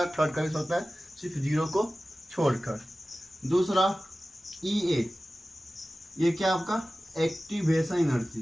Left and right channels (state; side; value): normal; both; correlation 0.96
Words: थर्ड का भी हो सकता है, सिर्फ जीरो को छोड़कर। दूसरा EA, ये क्या आपका activation